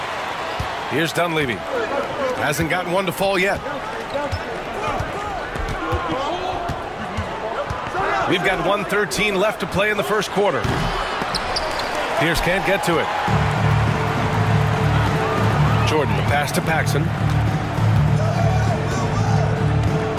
Here's Dunleavy. Hasn't gotten one to fall yet. We've got 1:13 left to play in the first quarter. Pierce can't get to it. Jordan, the pass to Paxson.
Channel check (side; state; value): both; identical; correlation 1.00